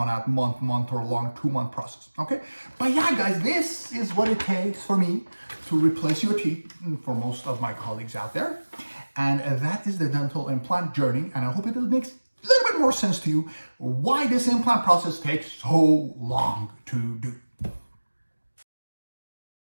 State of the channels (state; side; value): inverted; both; correlation -1.00